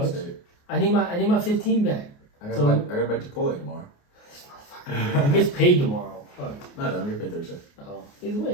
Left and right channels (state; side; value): late; right; 28 ms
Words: I need my 15 back. I got So- to bet Chipotle tomorrow. He gets paid tomorrow. Oh. No, I don't get paid Thursday. Oh. Either way,